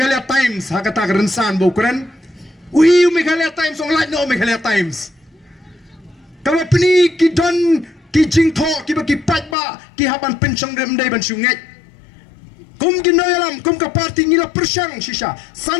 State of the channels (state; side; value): drops out; right; at 9.6 s